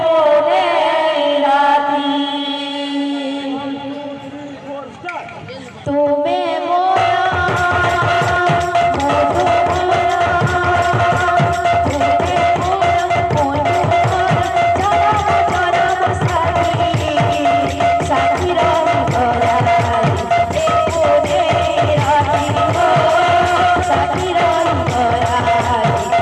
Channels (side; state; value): both; identical; correlation 1.00